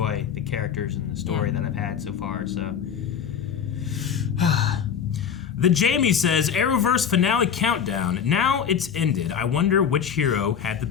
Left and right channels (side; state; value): right; quieter; 7.7 dB